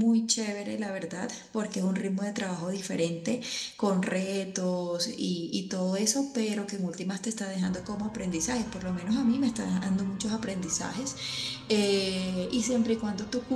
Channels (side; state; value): both; identical; correlation 1.00